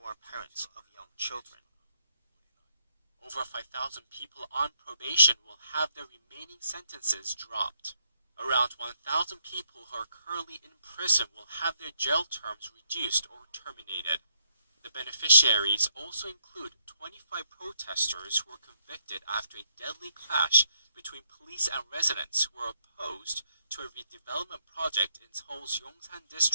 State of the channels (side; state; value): both; inverted; correlation -0.76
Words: are parents of young children. Over 5,000 people on probation will have their remaining sentences dropped. Around 1,000 people who are currently in prison will have their jail terms reduced or terminated. The beneficiaries also include 25 protesters who were convicted after a deadly clash between police and residents who were opposed to a redevelopment project in Seoul's Yongsan